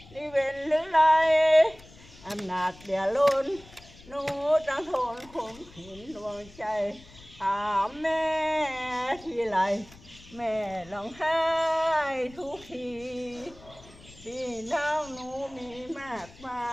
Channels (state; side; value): noise; left; rumble, 22 dB below the sound